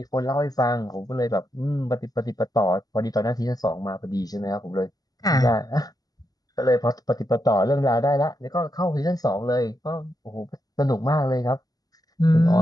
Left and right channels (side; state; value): right; late; 0.18 ms